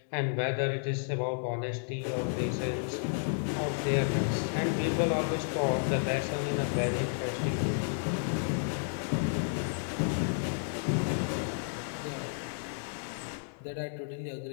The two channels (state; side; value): silent; right; digital silence